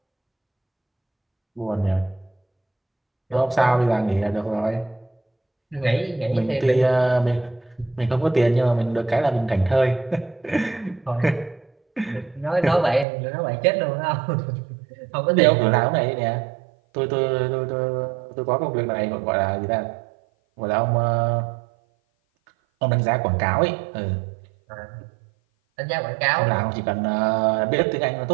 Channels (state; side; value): drops out; left; at 13.1 s